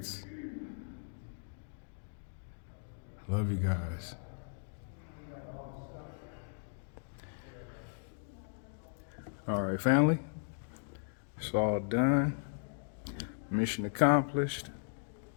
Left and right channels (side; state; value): right; silent; digital silence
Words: Love you guys. All right, family. It's all done. Mission accomplished.